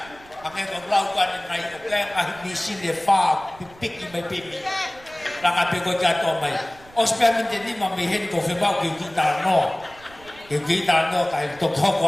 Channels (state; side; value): noise; right; rumble, 23 dB below the sound